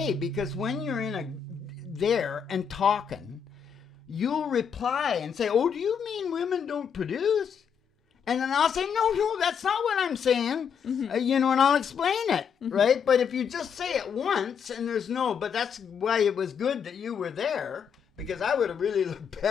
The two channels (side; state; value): right; quieter; 7.2 dB